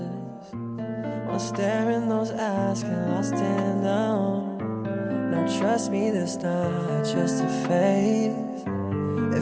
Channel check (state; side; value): identical; both; correlation 1.00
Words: Wanna stare in those eyes, get lost in them. Now trust me, this not just a phase.